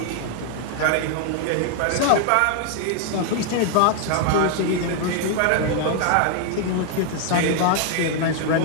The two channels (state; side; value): different; both; correlation 0.00